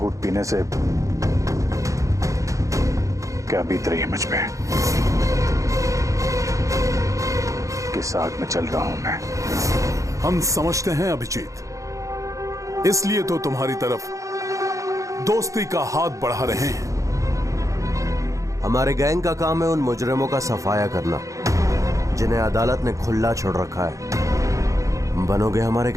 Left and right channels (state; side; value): late; left; 0.15 ms